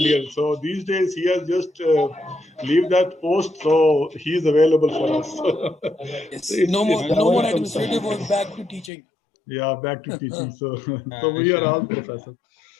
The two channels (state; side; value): drops out; right; at 8.9 s